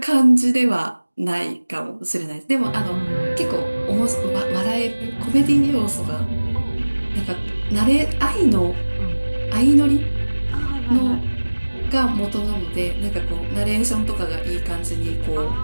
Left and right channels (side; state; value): both; inverted; correlation -1.00